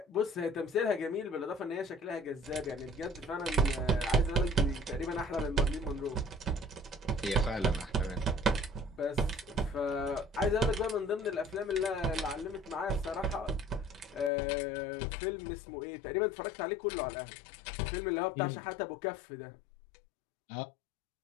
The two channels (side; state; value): right; drops out; at 14.3 s